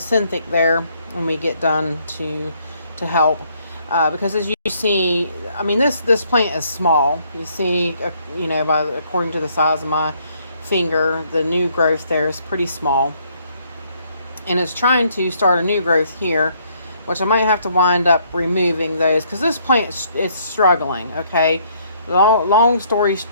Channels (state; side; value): inverted; both; correlation -0.67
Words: synthic there when we get done to help. Because as you see, I mean, this plant is small. You see, you know, according to the size of my finger, the new growth there is pretty small. And it's trying to start a new growth here, which I might have to wind up removing those, because this plant is struggling, okay? Long story